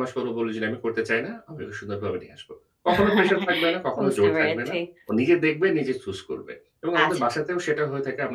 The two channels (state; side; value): identical; both; correlation 1.00